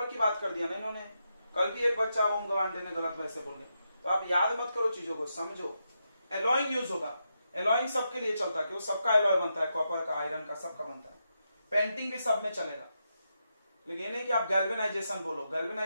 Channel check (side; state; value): both; inverted; correlation -0.85